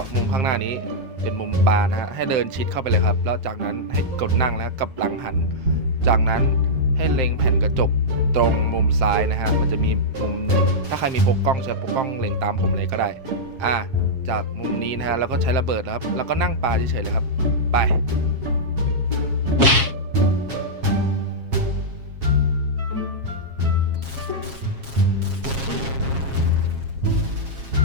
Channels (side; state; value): left; late; 7.4 ms